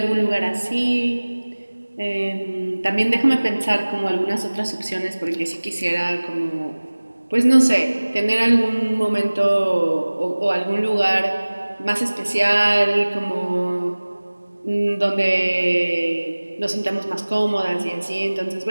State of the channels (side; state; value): both; inverted; correlation -1.00